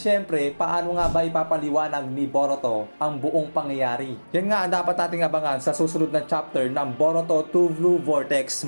paano nga ba ipapaliwanag ni Boruto ang buong pangyayari? Yan nga ang dapat nating abangan sa susunod na chapter ng Boruto 2 Blue Vortex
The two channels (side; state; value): both; inverted; correlation -1.00